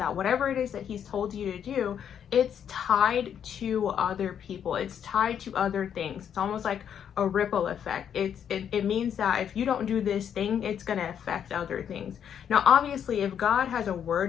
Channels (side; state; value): right; quieter; 8.7 dB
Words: whatever it is that He's told you to do, it's tied to other people. It's tied to other things. It's almost like a ripple effect. It means that if you don't do this thing, it's going to affect other things. Now, obviously, if God has a